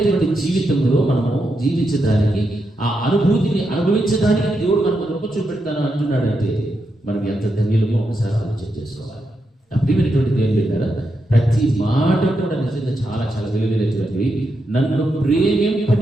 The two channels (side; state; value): both; normal; correlation 0.84